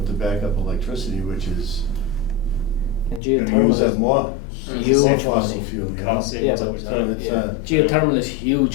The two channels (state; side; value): drops out; right; at 3.2 s